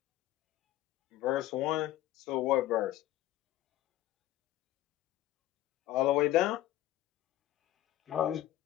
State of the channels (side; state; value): right; quieter; 14.5 dB